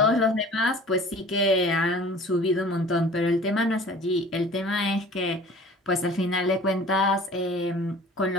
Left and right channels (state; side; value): normal; both; correlation 0.45